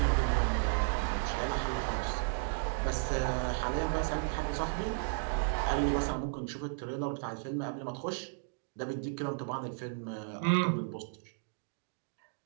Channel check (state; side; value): silent; left; digital silence